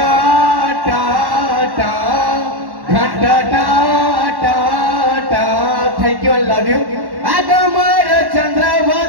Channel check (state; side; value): late; left; 1.1 ms